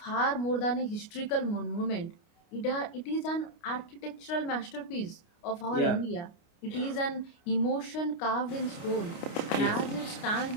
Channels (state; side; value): late; right; 29 ms